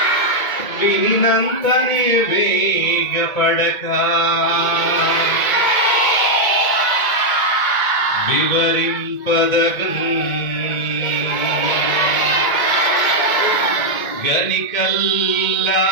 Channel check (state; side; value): late; right; 1.8 ms